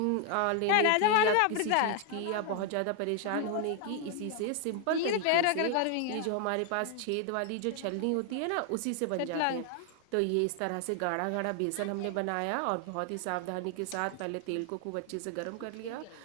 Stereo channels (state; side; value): different; both; correlation 0.00